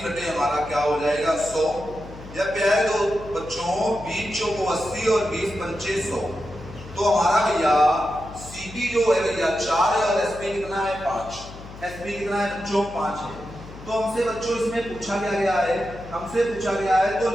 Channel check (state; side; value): noise; left; hum, 15 dB below the sound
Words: बटे हमारा क्या हो जाएगा 100। जब प्यारे दो बच्चों 20 चौको 80 और 20 पंचे 100, तो हमारा भैया सीपी जो है भैया 4 है और एसपी कितना है 5। एसपी कितना है बच्चों, 5 है। तो हमसे बच्चों इसमें पूछा क्या गया है, हमसे पूछा गया है तो